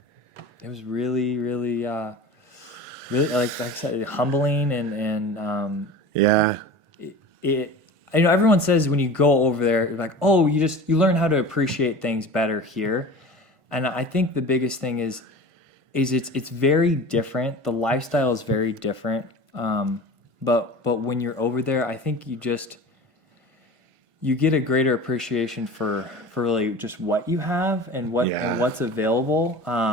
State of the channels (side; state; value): left; late; 1.5 ms